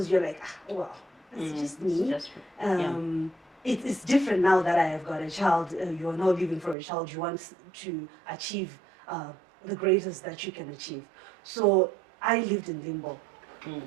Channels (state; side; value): drops out; left; at 6.8 s